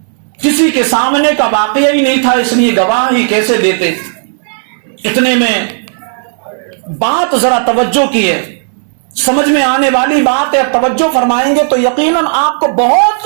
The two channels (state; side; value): silent; left; 71 dB below the other